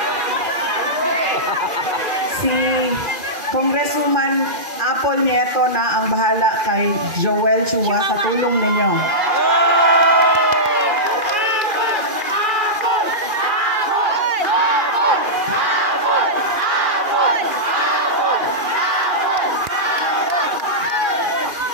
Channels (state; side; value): late; left; 2.4 ms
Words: Si Congresswoman Apple Nieto na ang bahala kay Joel Chua sa tulong ninyo.